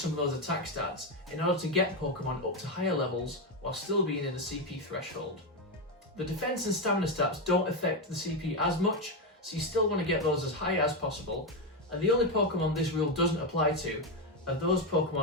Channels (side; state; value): both; normal; correlation 0.09